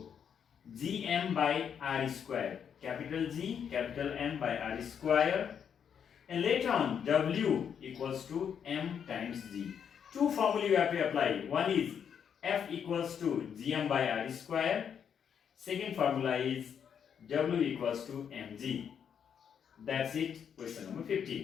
gm by r square. Capital G, capital M by r square. And later on, W equals to M times G. Two formulae you have to apply. One is F equals to Gm by R square. Second formula is W equals to Mg. That's it. Question number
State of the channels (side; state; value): right; quieter; 7.8 dB